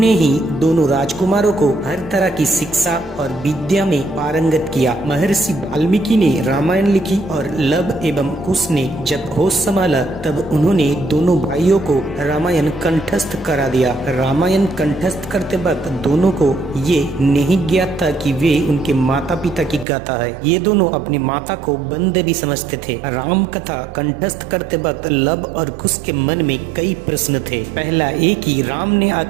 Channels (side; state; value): left; drops out; at 19.9 s